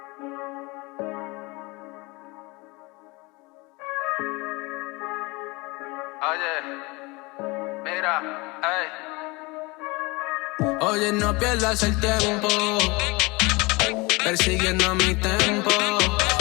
Oye, mira, ey. Oye, no pierdas el tiempo persiguiendo mi tempo.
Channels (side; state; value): right; quieter; 25.3 dB